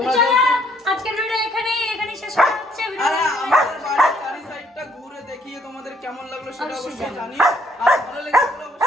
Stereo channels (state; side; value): normal; both; correlation 0.66